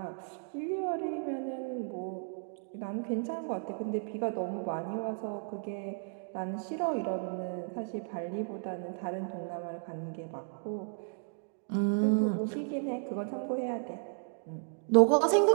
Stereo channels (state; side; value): silent; left; 55 dB below the other